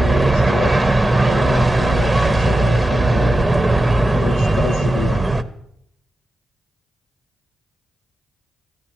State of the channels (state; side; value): normal; both; correlation 0.91